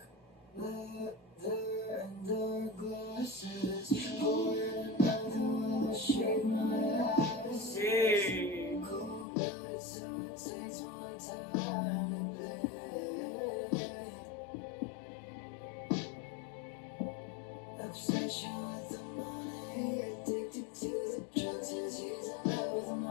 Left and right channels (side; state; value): right; drops out; at 9.2 s